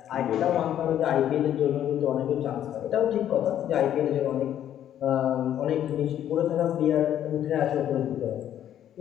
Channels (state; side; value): quieter; right; 10.8 dB